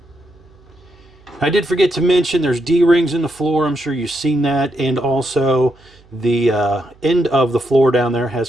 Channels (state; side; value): noise; right; hum, 28 dB below the sound